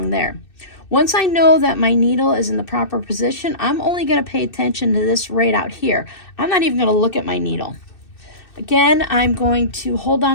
there. Once I know that my needle is in the proper position, I'm only going to pay attention to this right out here. I'm not even going to look at my needle. Again, I'm going to hold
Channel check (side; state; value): right; late; 2.6 ms